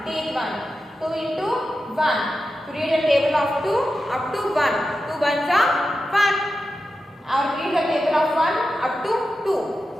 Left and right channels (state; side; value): normal; both; correlation 0.91